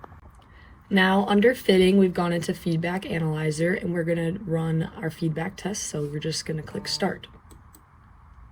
Now under fitting, we've gone into feedback analyzer and we're going to run our feedback test. So we're just going to click start.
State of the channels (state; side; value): identical; both; correlation 1.00